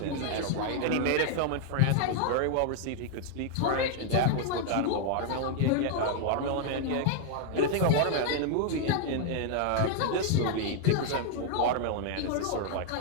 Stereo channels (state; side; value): different; both; correlation 0.00